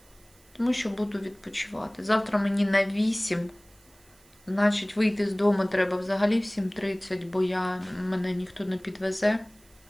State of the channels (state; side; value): noise; right; hiss, 29 dB below the sound